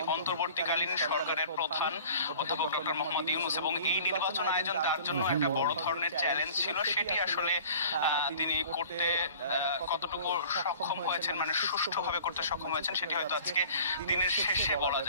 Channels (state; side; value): inverted; both; correlation -0.47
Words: অন্তর্বর্তীকালীন সরকারের প্রধান অধ্যাপক ডক্টর মোহাম্মদ ইউনূস এবং এই নির্বাচন আয়োজন তার জন্য একটা বড় ধরনের চ্যালেঞ্জ ছিল। সেটি আসলে তিনি করতে কতটুকু সক্ষম হয়েছেন, মানে সুষ্ঠুভাবে করতে সক্ষম হয়েছেন, সেটি হয়তো আজকে দিনের শেষে বলা